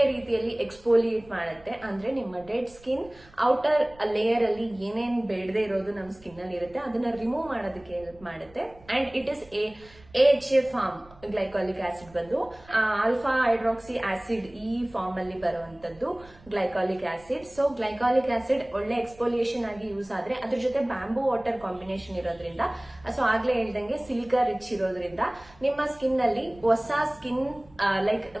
ರೀತಿಯಲ್ಲಿ ಎಕ್ಸ್ಫೋಲಿಯೇಟ್ ಮಾಡುತ್ತೆ. ಅಂದ್ರೆ ನಿಮ್ಮ ಡೆಡ್ ಸ್ಕಿನ್ ಔಟರ್ ಲೇಯರ್ ಅಲ್ಲಿ ಏನೇನ್ ಬೇಡದೆ ಇರೋದು ನಮ್ ಸ್ಕಿನ್ ಅಲ್ಲಿ ಇರುತ್ತೆ ಅದನ್ನ ರಿಮೂವ್ ಮಾಡೋದಕ್ಕೆ ಹೆಲ್ಪ್ ಮಾಡುತ್ತೆ. And it is AHA form. Glycolic acid ಬಂದು ಆಲ್ಫಾ ಹೈಡ್ರಾಕ್ಸಿ ಆಸಿಡ್ ಈ ಫಾರ್ಮ್ ಅಲ್ಲಿ ಬರುವಂತದ್ದು glycolic acid. So glycolic acid ಒಳ್ಳೆ ಎಕ್ಸ್ಫೋಲಿಯೇಷನ್ ಆಗಿ ಯೂಸ್ ಆದ್ರೆ ಅದ್ರ ಜೊತೆ ಬ್ಯಾಂಬೂ ವಾಟರ್ ಕಾಂಬಿನೇಷನ್ ಇರೋದ್ರಿಂದ, ಸೊ ಆಗ್ಲೇ ಹೇಳ್ದಂಗೆ ಸಿಲಿಕಾ ರಿಚ್ ಇರೋದ್ರಿಂದ ನಿಮ್ಮ ಸ್ಕಿನ್ ಅಲ್ಲಿ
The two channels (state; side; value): noise; right; rumble, 25 dB below the sound